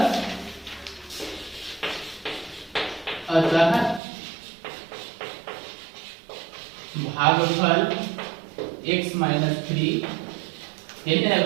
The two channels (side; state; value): left; drops out; at 4.0 s